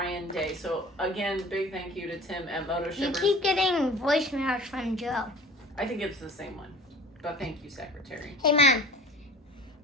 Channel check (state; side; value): normal; both; correlation 0.42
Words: Day. So again, big thank you to Tim at Moto You Shippers. keep getting voicemails from Joe. I think it's the same one, but thank you, Secretary. Hey, Mom.